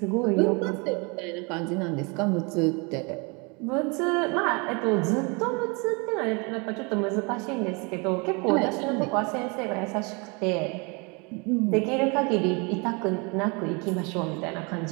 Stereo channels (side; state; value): left; quieter; 30.6 dB